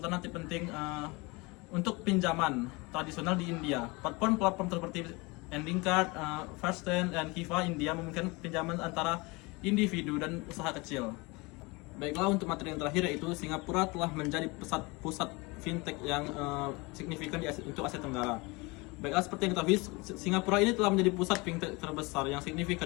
penting untuk pinjaman tradisional di India. Platform seperti Ending.Card, First10, dan Kiva India memungkinkan pinjaman antara individu dan usaha kecil. Baiklah, untuk materi yang terakhir yaitu Singapura telah menjadi pusat fintech yang signifikan untuk Asia Tenggara. Baiklah, seperti yang kita tahu, Singapura ini telah menjadi pusat fintech terbesar yang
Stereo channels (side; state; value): right; quieter; 25.9 dB